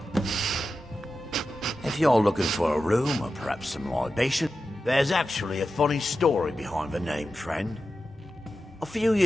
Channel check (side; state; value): both; normal; correlation 0.92